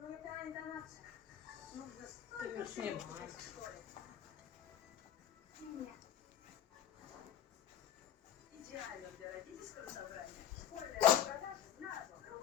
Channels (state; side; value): quieter; right; 10.3 dB